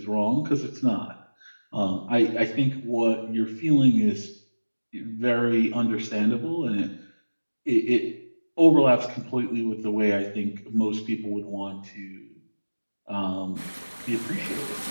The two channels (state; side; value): inverted; both; correlation -1.00